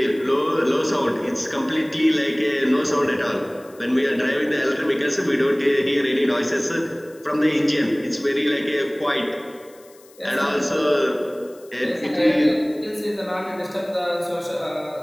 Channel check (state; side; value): noise; left; hiss, 27 dB below the sound